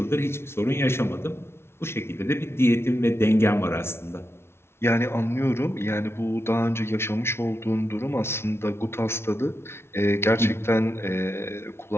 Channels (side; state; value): right; late; 0.12 ms